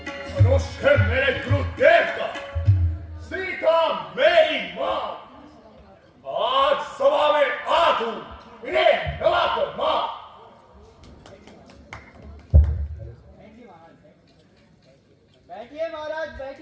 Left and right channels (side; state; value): both; identical; correlation 1.00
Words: मनुष्य मेरे गुरुदेव का, सीता मेरी मां, आज सभा में आ तू इन्हें नवा कर मां। बैठिए महाराज